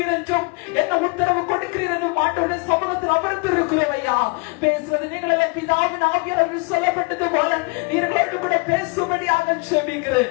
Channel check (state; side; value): quieter; right; 29.2 dB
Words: என்றும் என்ன உத்தரவு கொடுக்கிறீர் என்றும் ஆண்டவருடைய சமூகத்தில் அமர்ந்து இருக்கிறோம் ஐயா. பேசுவது நீங்கள் எல்லாம் பிதாவின் ஆவியானவர் சொல்லப்பட்டது போல நீங்களோடு கூட பேசும்படியாக செபிக்கிறேன்.